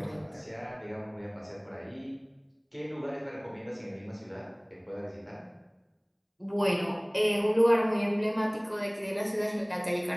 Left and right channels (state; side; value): identical; both; correlation 1.00